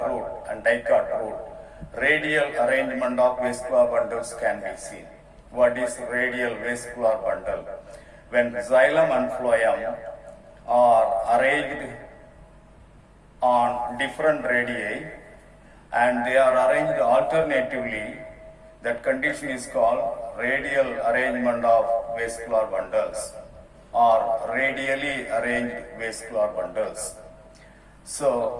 route and dicot route, radial arrangement of vascular bundles can be seen. What is radial vascular bundle? When xylem and phloem are arranged on different radii and they are arranged alternatively, that condition is called radial arrangement of vascular bundles or radially arranged vascular bundles.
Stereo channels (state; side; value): identical; both; correlation 1.00